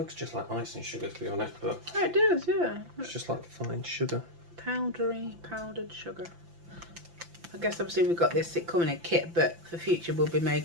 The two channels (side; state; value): left; late; 5.9 ms